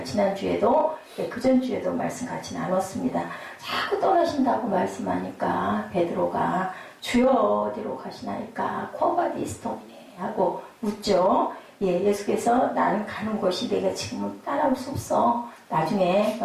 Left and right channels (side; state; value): both; identical; correlation 1.00